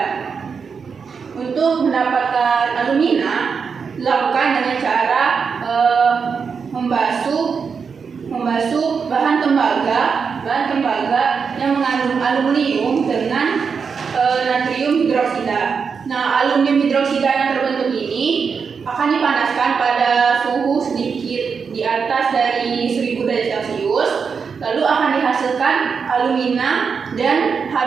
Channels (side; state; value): left; quieter; 5.8 dB